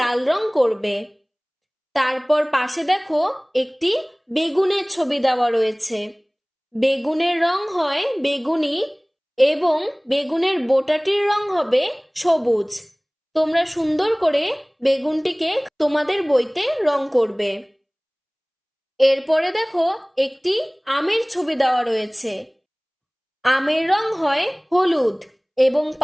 রং করবে। তারপর পাশে দেখো একটি বেগুনের ছবি দেওয়া রয়েছে। বেগুনের রং হয় বেগুনি এবং বেগুনের বোটাটির রং হবে সবুজ। তোমরা সুন্দর করে বেগুনটিকে তোমাদের বইতে রং করবে। এরপরে দেখো একটি আমের ছবি দেওয়া রয়েছে। আমের রং হয় হলুদ এবং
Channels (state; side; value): identical; both; correlation 1.00